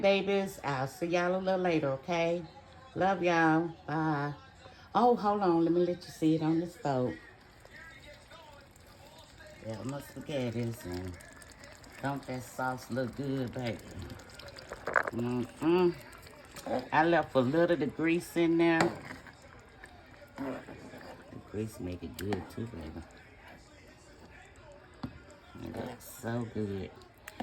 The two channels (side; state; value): both; identical; correlation 1.00